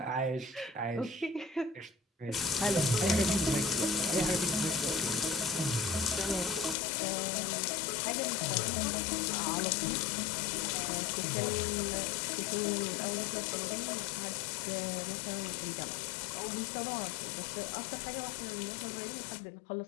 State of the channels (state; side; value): drops out; right; at 6.8 s